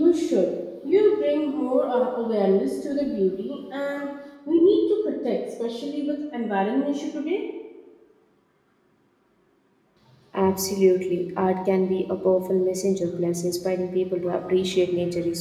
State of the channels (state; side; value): identical; both; correlation 1.00